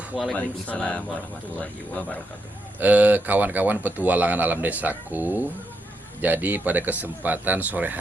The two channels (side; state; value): both; normal; correlation 0.81